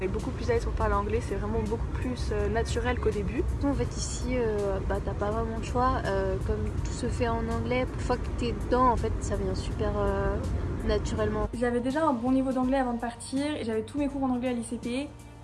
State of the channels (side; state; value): both; identical; correlation 1.00